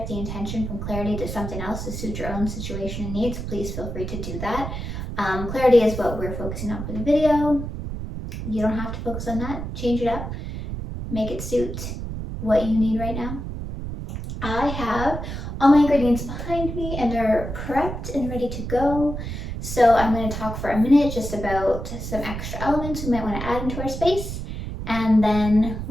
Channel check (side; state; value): right; noise; rumble, 6 dB below the sound